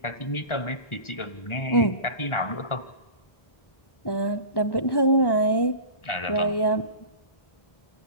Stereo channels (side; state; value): right; late; 1.4 ms